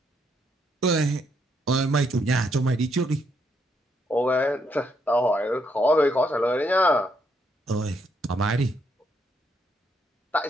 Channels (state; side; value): normal; both; correlation 0.75